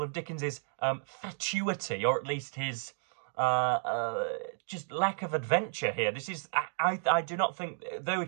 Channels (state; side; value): silent; left; digital silence